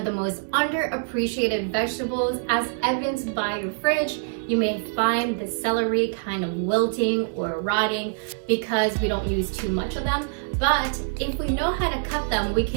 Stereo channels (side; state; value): left; silent; digital silence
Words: the most underappreciated vegetables, as evidenced by your fridge. You may find the celery kind of wilting or rotting because we don't use too much of them. But if we know how to cut them, we